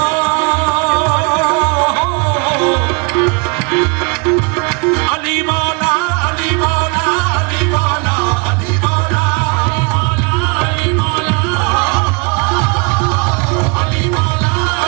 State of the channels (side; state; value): left; quieter; 31.3 dB